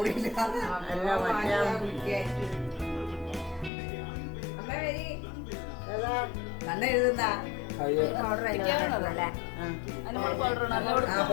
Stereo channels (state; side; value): drops out; right; at 3.7 s